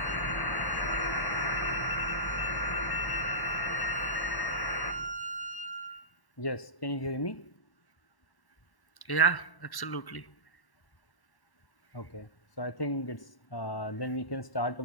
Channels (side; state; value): right; late; 1.1 ms